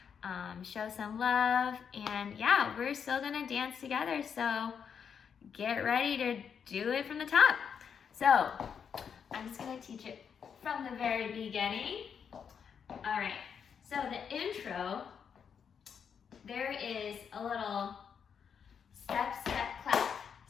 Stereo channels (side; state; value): right; quieter; 7.2 dB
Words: show some love, and yeah, we're still gonna dance together, so get ready to do it from the top. So, I'm just gonna teach it from the very beginning. All right, so the intro, there is a little step, step, clap.